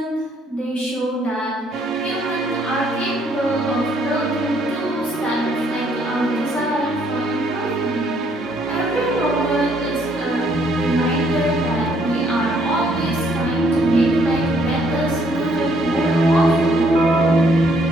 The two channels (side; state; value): both; normal; correlation 0.67